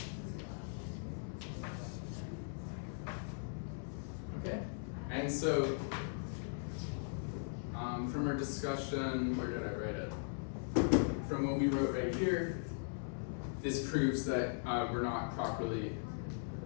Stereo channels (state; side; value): silent; right; 52 dB below the other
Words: Okay, and so from our discussion, where did I write it? From what we wrote right here, this proves that we're not properly